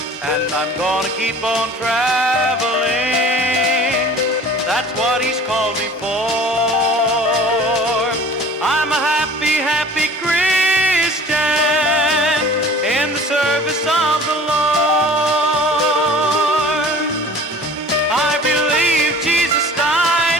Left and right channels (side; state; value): both; normal; correlation 0.46